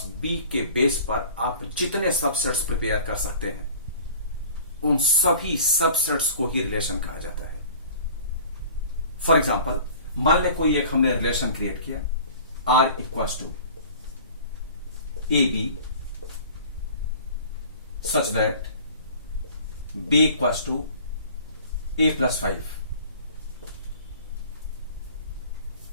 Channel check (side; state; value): both; inverted; correlation -0.46